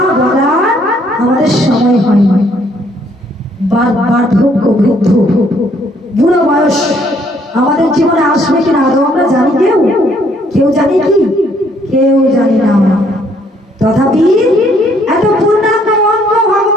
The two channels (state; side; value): normal; both; correlation 0.66